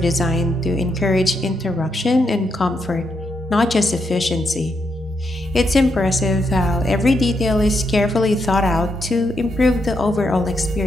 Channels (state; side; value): normal; both; correlation 0.80